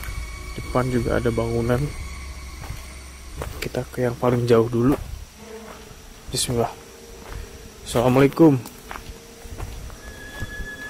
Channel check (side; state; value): both; identical; correlation 1.00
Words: depan juga ada bangunan. Kita ke yang paling jauh dulu. Bismillah. Assalamualaikum.